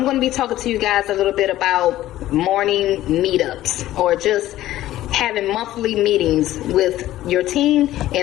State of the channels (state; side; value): quieter; right; 14.4 dB